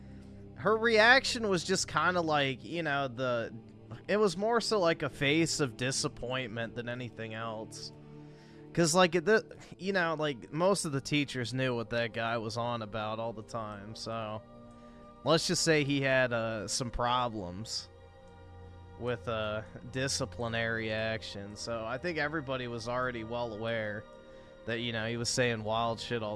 Her reaction was just kind of like, you know, It was more so like a face of disappointment than anything else. Because, like, you know, like, most of the teachers knew what that guy was on about all the time, so... Let's just say he had some problems with disciplinary action, so I think everybody was already well aware that, you know, he was saying wild shit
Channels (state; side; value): identical; both; correlation 1.00